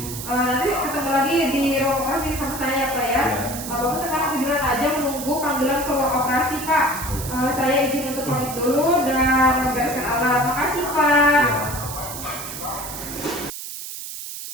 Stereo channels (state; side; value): noise; right; hiss, 9 dB below the sound